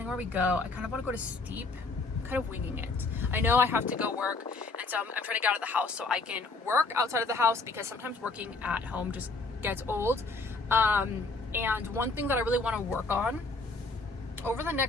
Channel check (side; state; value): right; quieter; 3.7 dB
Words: where we go. I kind of want to go to Steep. I'm kind of winging it. I know I have to go work, and so I'm trying to get out of the house so I can work outside of the house, because sometimes working at home just gets old. And one thing that I really want to work on over the